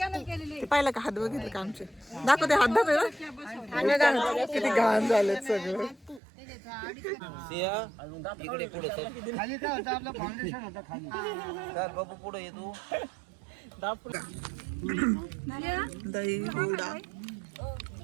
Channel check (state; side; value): drops out; left; at 6.2 s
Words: पाहिलं का? हात बघितलं का आमचे? दाखव ते हात दाखव ना. किती घाण झालेत सगळं. इकडे पुढे खाली काय होतं आपलं फाउंडेशन होतं खाली. चल बाबू पुढे ये तू. दही, हुडा,